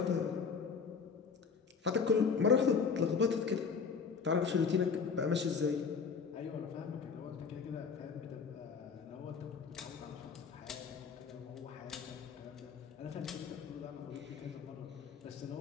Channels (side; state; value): right; quieter; 5.6 dB